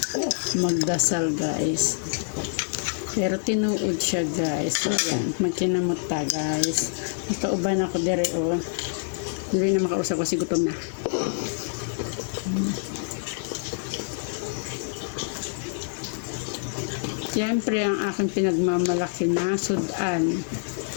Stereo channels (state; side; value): silent; right; digital silence